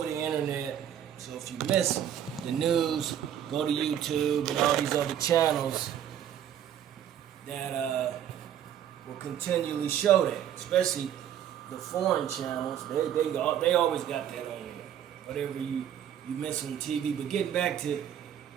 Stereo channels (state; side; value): quieter; left; 10.1 dB